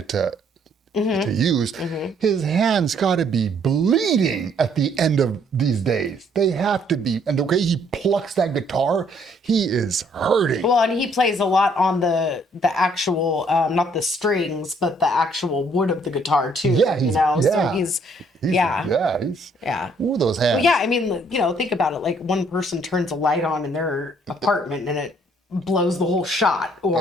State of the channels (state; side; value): normal; both; correlation 0.65